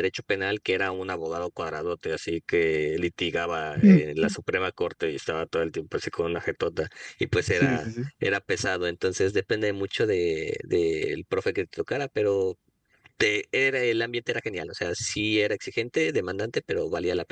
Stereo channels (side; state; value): both; identical; correlation 1.00